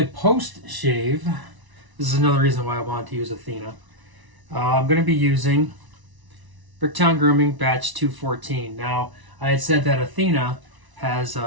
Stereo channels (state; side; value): late; left; 1.0 ms